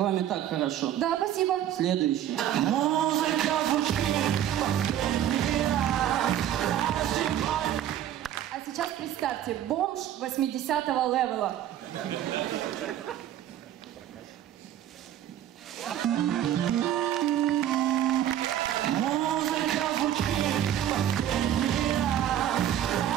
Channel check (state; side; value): quieter; left; 11.2 dB